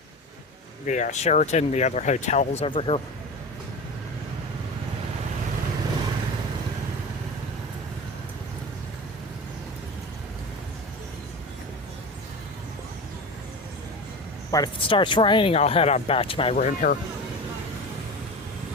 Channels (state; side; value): normal; both; correlation 0.29